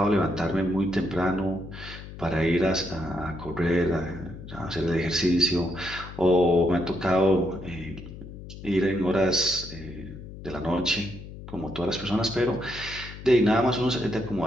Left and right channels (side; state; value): left; noise; hum, 13 dB below the sound